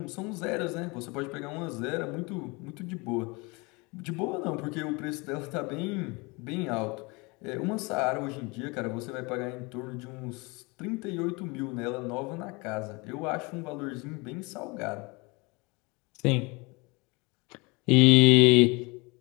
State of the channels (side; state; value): right; quieter; 27.2 dB